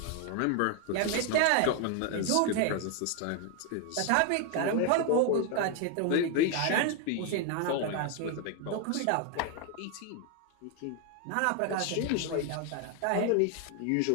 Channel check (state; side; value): different; both; correlation 0.01